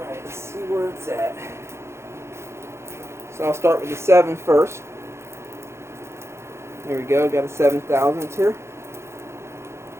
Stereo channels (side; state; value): left; late; 0.13 ms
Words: let's see where it's at. So I'll start with the 7 first. There we go, got a 7 thousandths here.